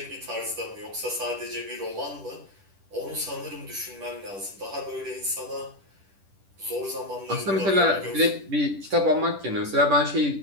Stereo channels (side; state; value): left; late; 10 ms